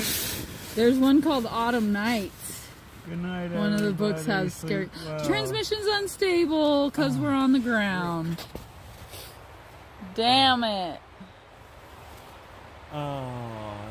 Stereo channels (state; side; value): identical; both; correlation 1.00